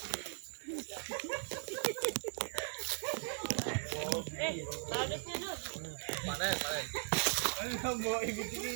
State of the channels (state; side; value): silent; left; 52 dB below the other